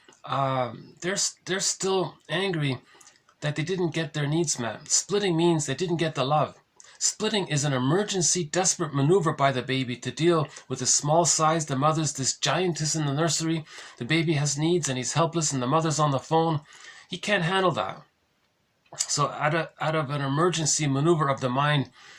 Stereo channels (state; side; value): identical; both; correlation 1.00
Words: they're still angry that they didn't get their needs met. Splitting means they didn't get the love. Splitting is an emergency, desperate maneuver by the baby to deal with the small size. The mother's this giantess in the nursery. The baby has needs and he's helpless and the mother's on the phone. He can't handle that. So out of an emergency maneuver of the mind,